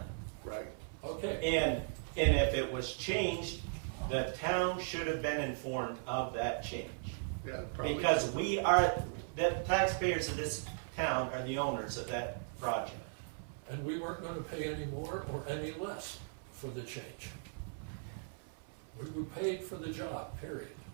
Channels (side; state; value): left; silent; 53 dB below the other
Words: right. Okay, And if it was changed, the town should have been informed of that change. Yeah, probably. Because we are, the taxpayers of this town are the owners of that project. and we weren't gonna pay any more or any less for the change. We were paid for the job, period.